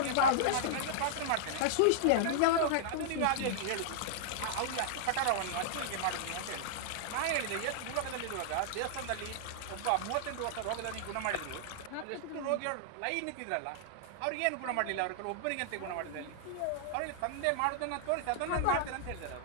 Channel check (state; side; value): different; both; correlation -0.01